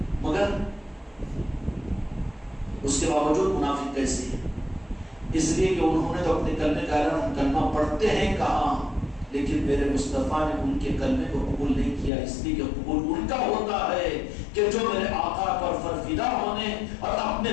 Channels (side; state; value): right; drops out; at 12.1 s